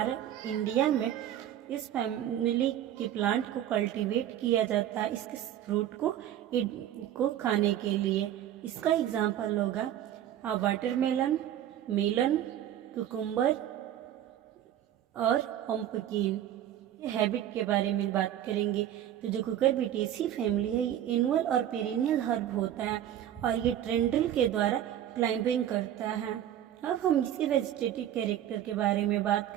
इंडिया में इस फैमिली के प्लांट को कल्टीवेट किया जाता है इसके फ्रूट को खाने के लिए। इसका एग्जाम्पल होगा वाटरमेलन, मेलन, कुकुम्बर और पंपकिन। हैबिट के बारे में बात करेंगे। तो जो कुकुरबिटेसी फैमिली है ये एनुअल और पेरिनियल हर्ब होता है और ये ट्रेंड्रिल के द्वारा क्लाइंबिंग करता है। अब हम इसके वेजिटेटिव कैरेक्टर के बारे में बात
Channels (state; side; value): quieter; left; 11.3 dB